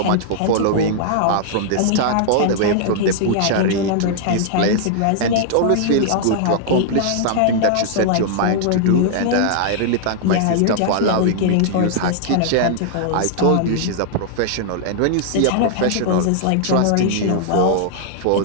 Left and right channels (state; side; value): different; both; correlation -0.01